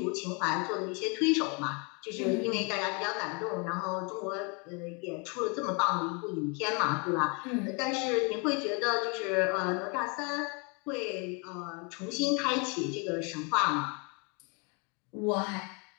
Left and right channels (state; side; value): quieter; right; 33.0 dB